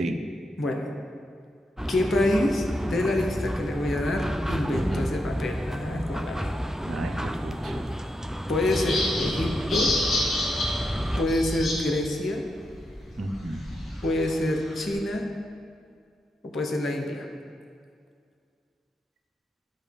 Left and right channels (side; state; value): both; normal; correlation 0.84